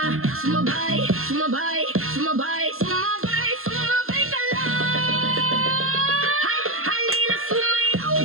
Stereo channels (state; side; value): late; left; 0.62 ms